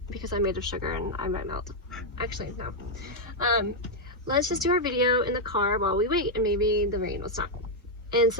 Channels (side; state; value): both; normal; correlation -0.01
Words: because I'm made of sugar and I might melt. Actually, no. Let's just do our video in the car while we wait and maybe the rain will stop. And